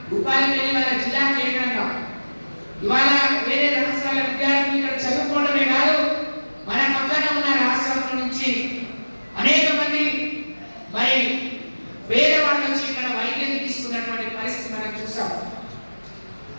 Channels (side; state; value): both; inverted; correlation -1.00